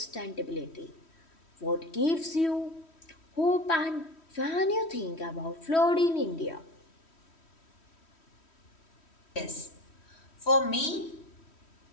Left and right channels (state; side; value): late; right; 3.1 ms